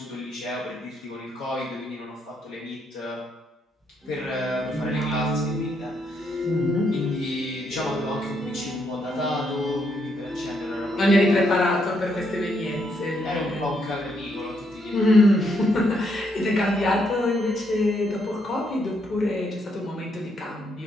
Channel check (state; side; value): normal; both; correlation 0.75